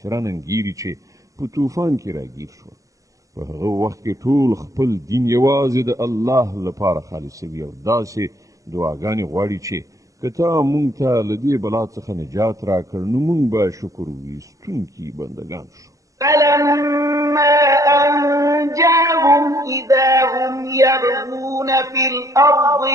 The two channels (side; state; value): left; late; 0.16 ms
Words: انګیري چې په طوفان کې راګیر شول. په هغه وخت کې ټول خپل دین یوازې د الله لپاره خالصوي او داسې دعاګانې غواړي چې که تا مونږ ته له دې بلا څخه نجات راکړ نو مونږ به شکر ویستونکي بندګان شو. فلما أنجاهم إذا هم يبغون في الأرض